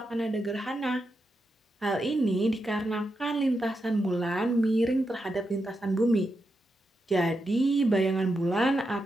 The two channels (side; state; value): both; normal; correlation 0.86